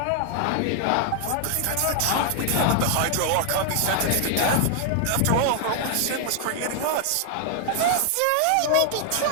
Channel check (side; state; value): both; different; correlation 0.00